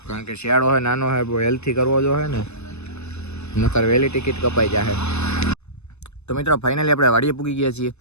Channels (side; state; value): right; late; 0.81 ms